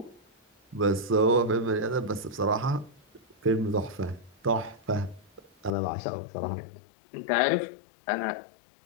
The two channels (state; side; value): drops out; right; at 5.7 s